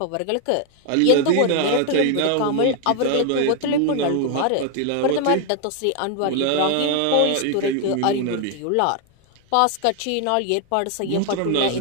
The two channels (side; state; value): both; different; correlation 0.01